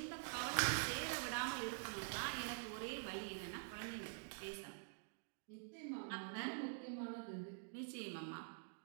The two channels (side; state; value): left; silent; digital silence